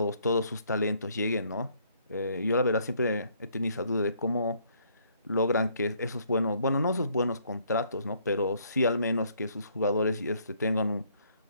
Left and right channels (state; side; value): inverted; both; correlation -0.66